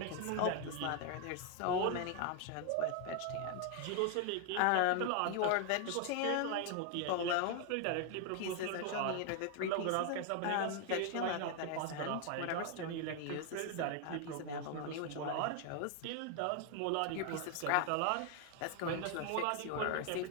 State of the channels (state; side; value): different; both; correlation 0.01